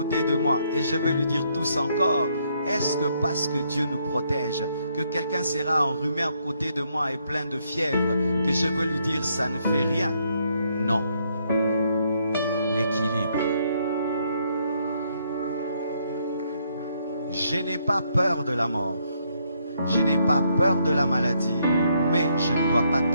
de moi et je vais lui dire tousse encore? Est-ce que parce que Dieu nous protège, que quelqu'un sera enrhumé à côté de moi et plein de fièvre, que je veux lui dire ça ne fait rien? Non. L'équilibre. Je n'ai pas peur de la mort. Je n'ai pas peur de la maladie, mais je ne dois pas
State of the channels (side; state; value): both; inverted; correlation -0.73